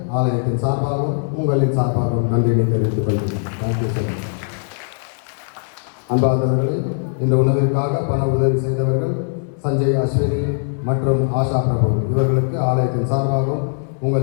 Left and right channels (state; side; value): silent; right; 63 dB below the other